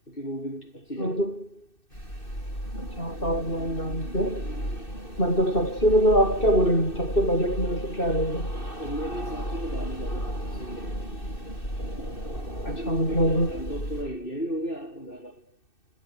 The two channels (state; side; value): late; right; 2.6 ms